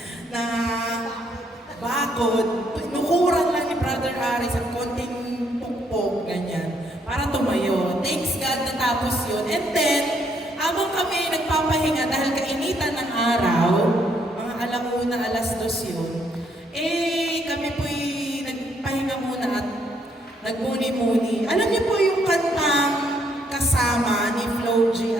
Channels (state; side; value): normal; both; correlation 0.71